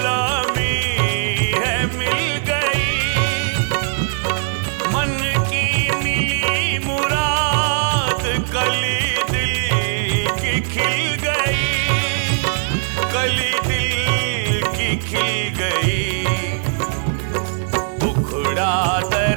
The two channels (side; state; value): left; silent; 64 dB below the other